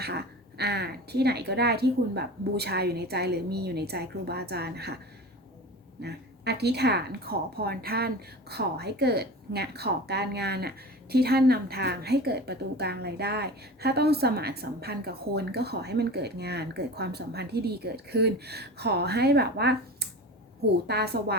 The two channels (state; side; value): normal; both; correlation 0.33